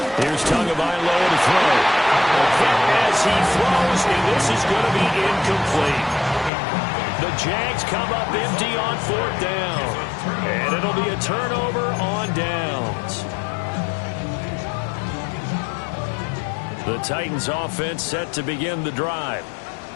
Here's Tagovailoa to throw. A hit as he throws, and this is going to be incomplete. The Jags come up empty on 4th down. And it'll be a turnover on downs. The Titans offense set to begin the drive.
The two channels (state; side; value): drops out; right; at 6.5 s